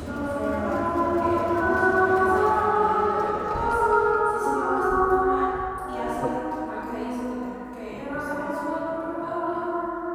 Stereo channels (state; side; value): identical; both; correlation 1.00